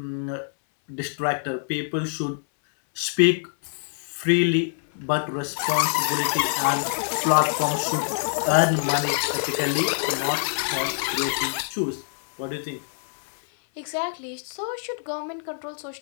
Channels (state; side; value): silent; right; 62 dB below the other